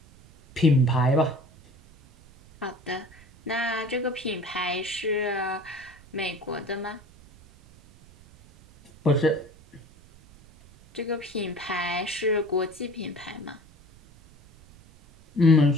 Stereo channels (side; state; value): right; noise; rumble, 25 dB below the sound